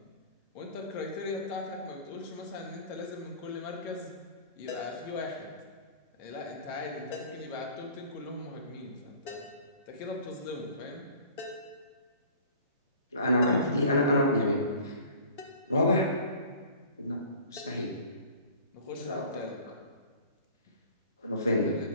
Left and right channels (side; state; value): both; inverted; correlation -0.46